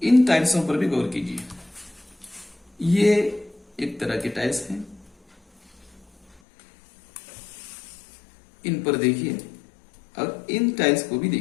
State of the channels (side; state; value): right; drops out; at 6.4 s